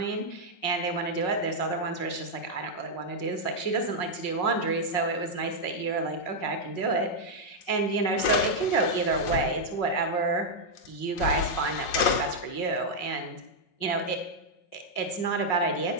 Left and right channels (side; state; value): right; late; 5.5 ms